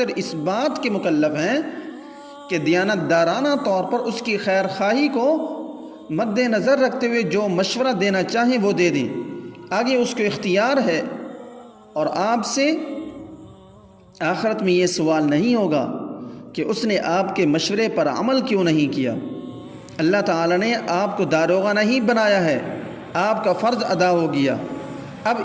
اس بات کے مکلف ہیں کہ دیانت دارانہ طور پر اس کی خیر خواہی کو مد نظر رکھتے ہوئے جو مشورہ دینا چاہیں وہ دے دیں، آگے اس کو اختیار ہے۔ اور آپ سے آخرت میں یہ سوال نہیں ہوگا کہ اس نے آپ کے مشورے پر عمل کیوں نہیں کیا۔ اللہ تعالیٰ نے آپ کو داروغہ نہیں بنایا ہے، آپ کا فرض ادا ہو گیا۔ اب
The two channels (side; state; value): both; identical; correlation 1.00